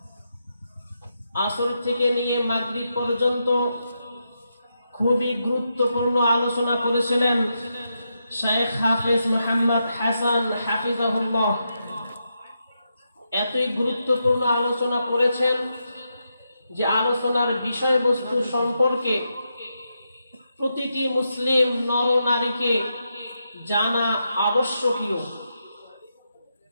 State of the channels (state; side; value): inverted; both; correlation -0.84